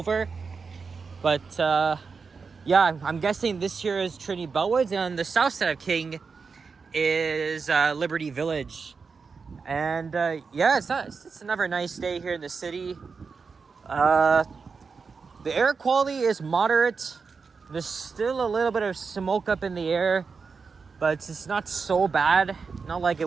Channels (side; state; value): left; quieter; 5.1 dB